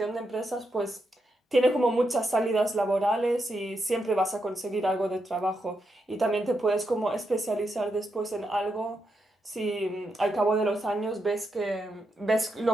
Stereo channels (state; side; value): normal; both; correlation 0.83